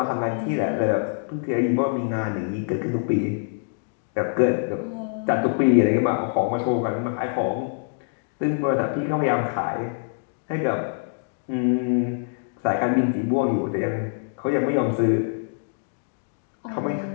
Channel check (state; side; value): silent; right; digital silence